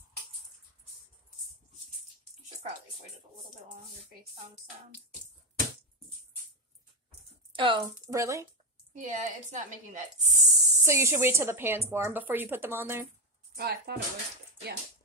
You should probably wait it a little bit longer based on the sound. Oh, really? Yeah, it's not making that. So you should wait till the pan's warm before you put them on there? Oh, I thought it was. Yeah.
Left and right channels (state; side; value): normal; both; correlation 0.08